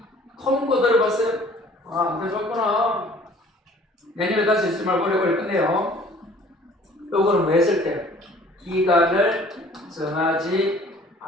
통고 들어봤어요? 아, 안 들어봤구나. 내년에 다시 있을 말 오래오래 끝내요. 요거는 뭐 했을 때? 기간을 정하지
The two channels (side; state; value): both; normal; correlation 0.53